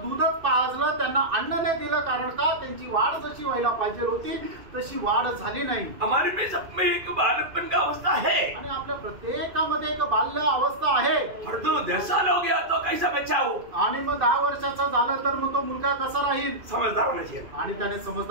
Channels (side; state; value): left; late; 2.5 ms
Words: दूधच पाजलं, त्यांना अन्न नाही दिलं. कारण का? त्यांची वाढ जशी व्हायला पाहिजे होती तशी वाढ झाली नाही. हमारे में सब में एक बालकपन का अवस्था है आणि आपल्या प्रत्येकामध्ये एक बाल्य अवस्था आहे. और तो 10 साल हो गया तो कैसा बच्चा हो, आणि मग 10 वर्षाचा झालं तर मग तो मुलगा कसा राहील? समझदार होना चाहिए आणि त्याने